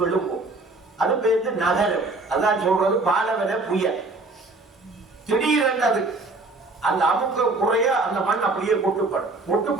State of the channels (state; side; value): quieter; left; 3.2 dB